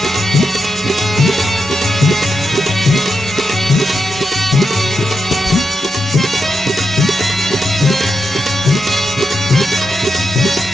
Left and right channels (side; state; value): both; normal; correlation 0.86